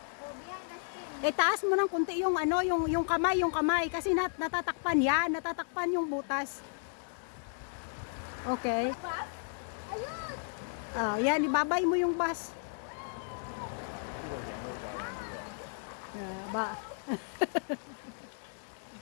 Taas mo ng kunti yung ano, yung kamay kasi natatakpan yan, natatakpan yung butas. Okay. Oh, yan, ibabay mo yung bus. Ba.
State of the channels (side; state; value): right; silent; digital silence